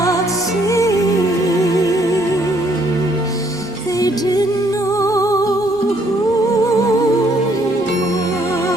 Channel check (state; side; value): normal; both; correlation 0.67